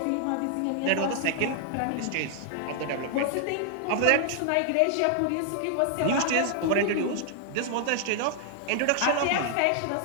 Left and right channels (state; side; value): different; both; correlation 0.00